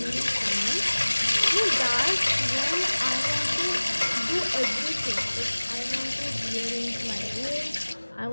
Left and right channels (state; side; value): inverted; both; correlation -1.00